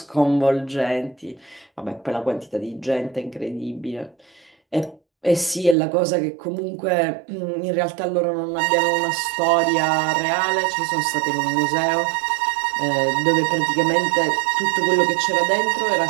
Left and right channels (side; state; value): left; drops out; at 5.8 s